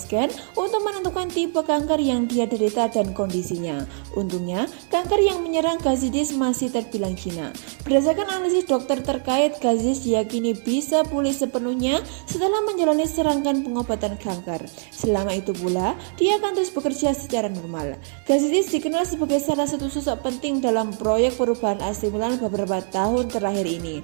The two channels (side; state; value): left; silent; 63 dB below the other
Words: untuk menentukan tipe kanker yang dia derita dan kondisinya. Untungnya, kanker yang menyerang Gazidis masih terbilang jinak. Berdasarkan analisis dokter terkait, Gazidis diyakini bisa pulih sepenuhnya setelah menjalani serangkaian pengobatan kanker. Selama itu pula, dia akan terus bekerja secara normal. Gazidis dikenal sebagai salah satu sosok penting dalam proyek perubahan AC Milan beberapa tahun terakhir ini.